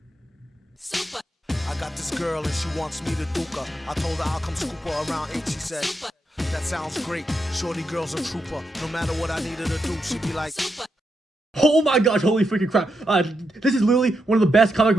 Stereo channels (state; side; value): normal; both; correlation 0.84